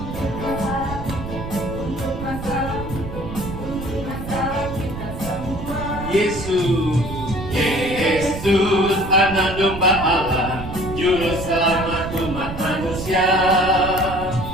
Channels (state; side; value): noise; right; rumble, 9 dB below the sound